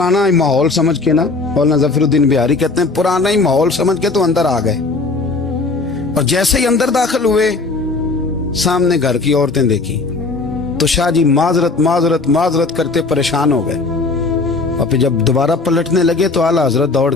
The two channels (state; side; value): quieter; right; 3.7 dB